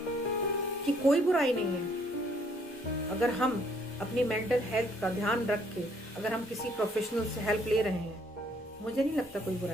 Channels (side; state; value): both; normal; correlation 0.65